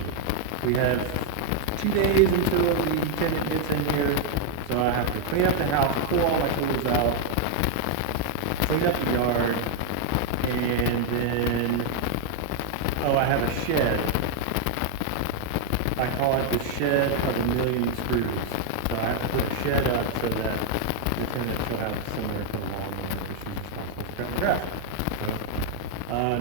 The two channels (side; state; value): both; different; correlation 0.00